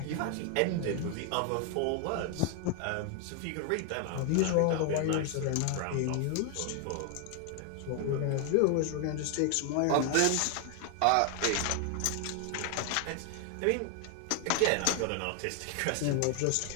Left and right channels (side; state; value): both; different; correlation 0.00